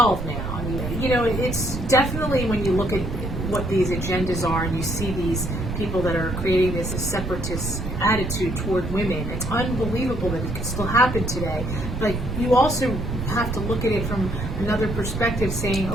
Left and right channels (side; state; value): right; noise; rumble, 5 dB below the sound